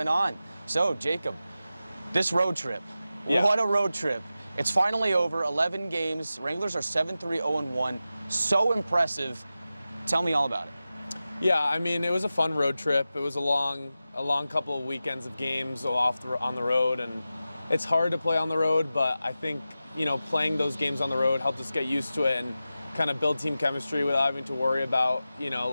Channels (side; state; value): both; inverted; correlation -0.93